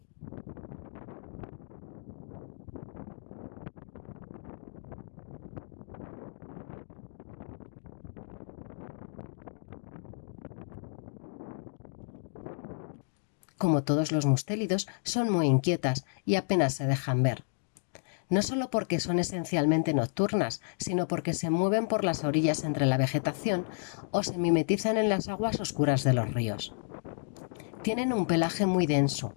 Como todos los mustélidos, son muy inquietas y apenas se dejan ver. No solo porque son esencialmente nocturnas, sino porque se mueven por las orillas entre la vegetación o se mimetizan en las aguas oscuras de los ríos. Tienen un pelaje muy denso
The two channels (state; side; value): silent; right; digital silence